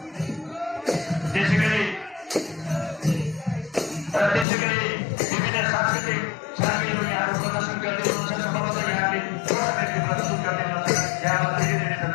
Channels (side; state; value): right; drops out; at 4.5 s